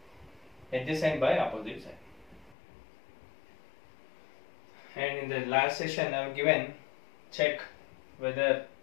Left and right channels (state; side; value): drops out; right; at 2.6 s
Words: adjacent by opposite side. And in the last session I have given, check whether